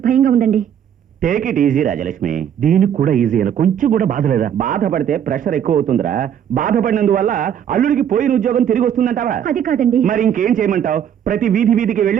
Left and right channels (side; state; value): left; quieter; 9.2 dB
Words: భయంగా ఉందండి. Take it easy Rajalakshmi. దీనికి కూడా ఈజీ అయినా కొంచెం కూడా బాధ లేదా? బాధపడితే ప్రెషర్ ఎక్కువ అవుతుందిరా. బాధపడినందువల్ల అల్లుడికి పోయిన ఉద్యోగం తిరిగి వస్తుందంటావా? అది కాదండి. మరి ఇంకేం చేయమంటావు? ప్రతి వీధికి